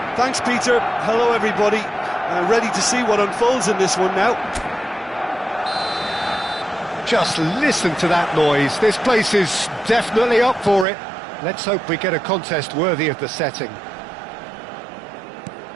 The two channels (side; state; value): left; drops out; at 10.9 s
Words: Thanks, Peter. Hello, everybody. Ready to see what unfolds in this one now. Just listen to that noise. This place is definitely up for it. Let's hope we get a contest worthy of the setting.